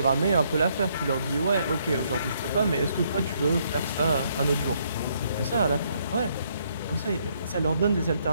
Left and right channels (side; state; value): both; inverted; correlation -0.71